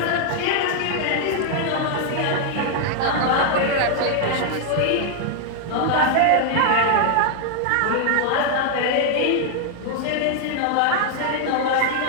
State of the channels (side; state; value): both; different; correlation 0.00